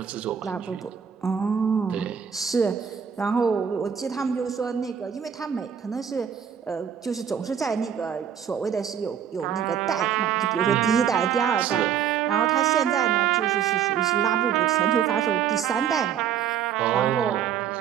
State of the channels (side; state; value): left; quieter; 8.5 dB